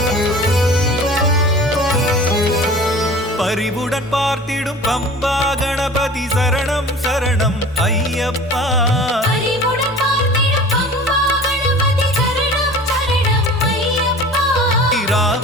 பரிவுடன் பார்த்திடும் பம்பா கணபதி சரணம் சரணம் ஐயப்பா. அறிவுடன் பார்த்திடும் பம்பா கணபதி சரணம் சரணம் ஐயப்பா.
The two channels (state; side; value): normal; both; correlation 0.41